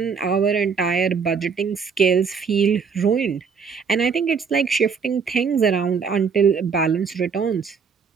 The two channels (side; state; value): left; quieter; 5.9 dB